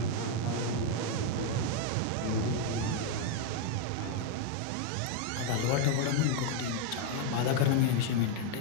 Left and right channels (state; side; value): different; both; correlation 0.01